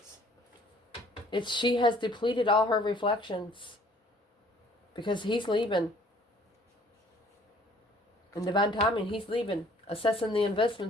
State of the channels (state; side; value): normal; both; correlation 0.57